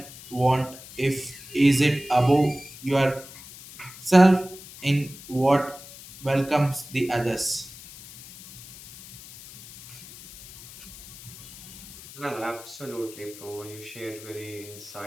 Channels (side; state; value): left; noise; hiss, 17 dB below the sound